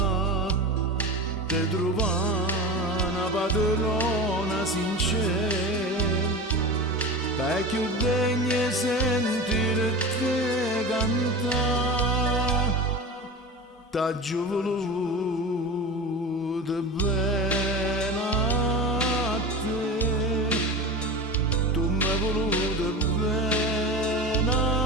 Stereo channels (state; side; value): normal; both; correlation 0.29